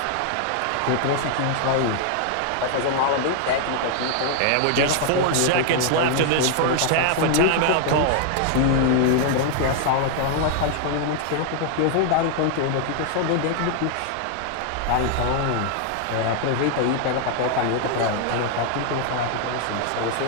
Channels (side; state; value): both; different; correlation 0.00